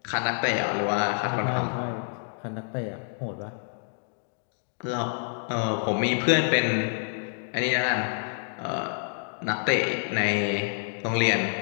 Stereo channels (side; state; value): right; silent; digital silence